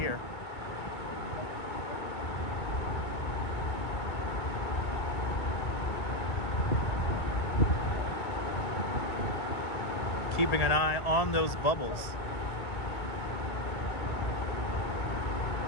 Keeping an eye on those bubbles.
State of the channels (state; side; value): late; right; 2.1 ms